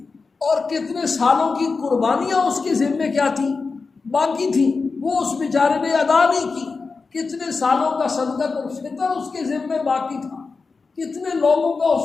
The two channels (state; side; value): quieter; right; 4.4 dB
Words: اور کتنے سالوں کی قربانیاں اس کے ذمے کیا تھیں؟ باقی تھیں، وہ اس بیچارے نے ادا نہیں کی۔ کتنے سالوں کا صدقۃ الفطر اس کے ذمے باقی تھا، کتنے لوگوں کا